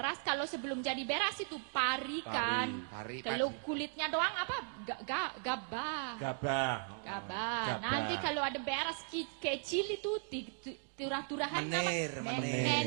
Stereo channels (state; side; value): silent; left; 53 dB below the other